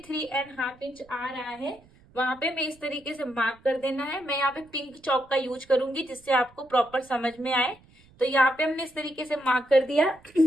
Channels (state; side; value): noise; right; rumble, 28 dB below the sound